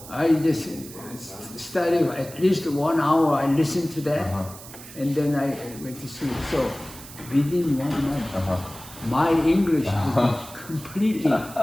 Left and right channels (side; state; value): right; noise; hiss, 16 dB below the sound